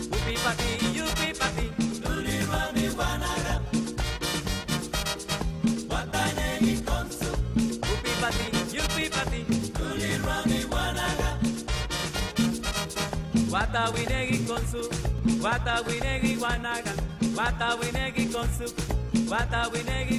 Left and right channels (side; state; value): both; identical; correlation 1.00